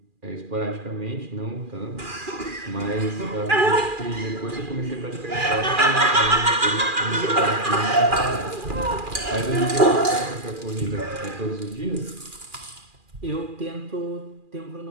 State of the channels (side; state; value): left; late; 2.4 ms